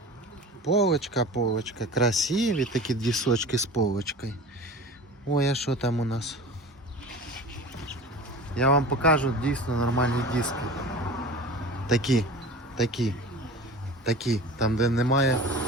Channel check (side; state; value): both; normal; correlation 0.37